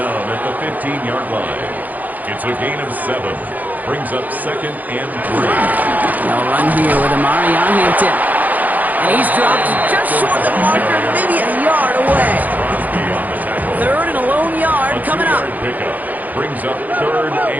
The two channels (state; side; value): late; left; 0.081 ms